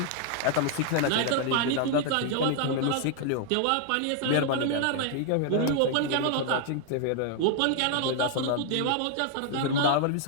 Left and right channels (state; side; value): different; both; correlation 0.00